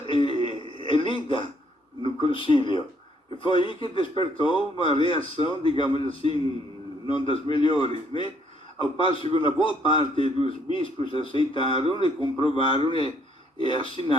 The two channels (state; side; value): normal; both; correlation 0.67